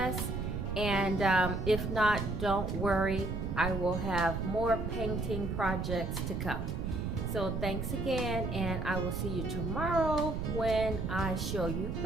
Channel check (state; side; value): noise; right; rumble, 3 dB below the sound